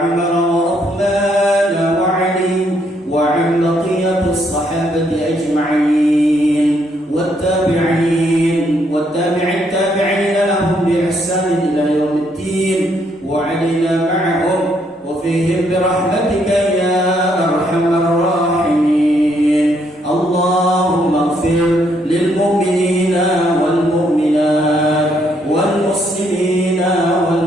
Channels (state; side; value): normal; both; correlation 0.72